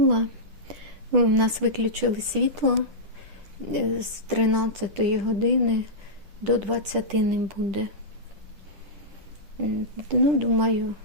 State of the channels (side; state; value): left; late; 9.9 ms